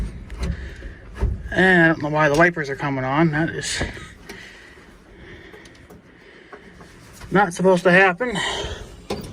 And I don't know why the wipers are coming on. That is not supposed to happen.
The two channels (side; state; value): both; identical; correlation 1.00